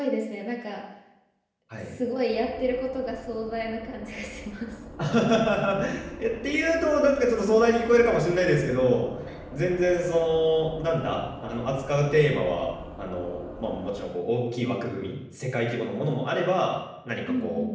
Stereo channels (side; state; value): both; identical; correlation 1.00